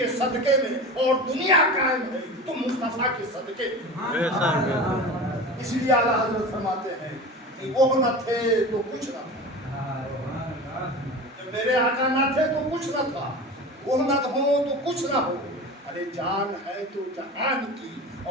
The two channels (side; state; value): both; normal; correlation 0.32